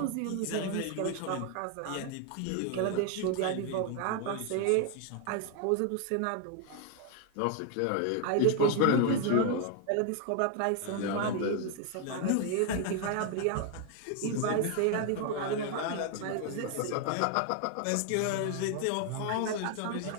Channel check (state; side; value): different; both; correlation 0.00